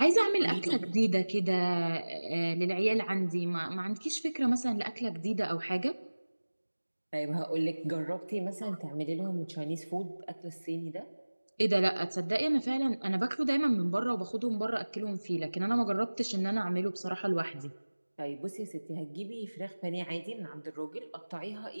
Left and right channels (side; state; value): both; inverted; correlation -1.00